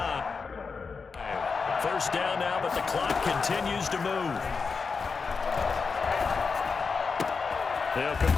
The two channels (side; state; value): right; quieter; 5.0 dB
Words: First down now, but the clock continues to move. They'll